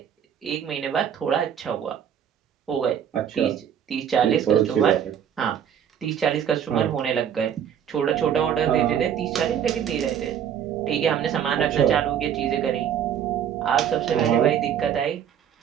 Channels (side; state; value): left; quieter; 8.9 dB